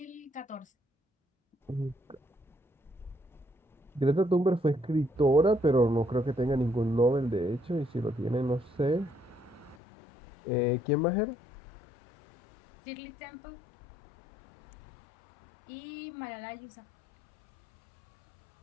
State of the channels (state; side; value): drops out; right; at 9.8 s